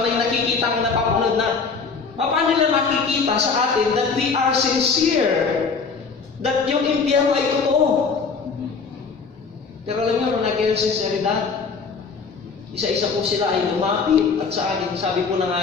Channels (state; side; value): quieter; right; 5.0 dB